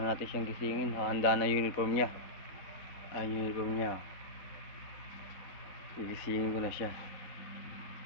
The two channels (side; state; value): right; late; 3.9 ms